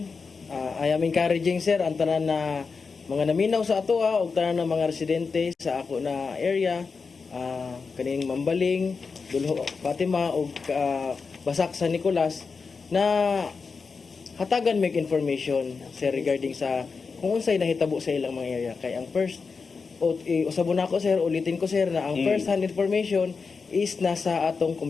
I am encouraging sir ang tanan na mga naminaw sa ato ug tanan na mga residente sa ako na area, kaning Mambaling, Dulho, Fatima ug Basak San Nicolas na hatagan make information sir regarding sa kung unsay nahitabo sa ilang mga area. Kay ang first usabon ako sir, ulitin ko sir na ang first hand information is nasa atong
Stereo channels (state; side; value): quieter; right; 4.9 dB